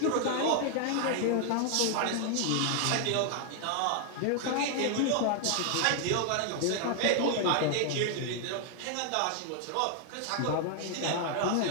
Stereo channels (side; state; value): both; different; correlation 0.00